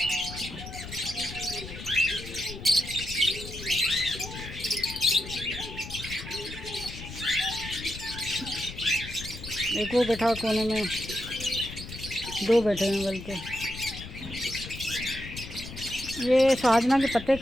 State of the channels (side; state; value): left; noise; rumble, 11 dB below the sound